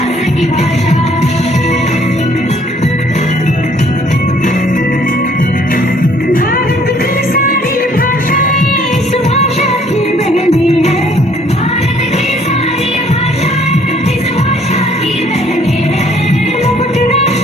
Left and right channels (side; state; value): both; normal; correlation 0.61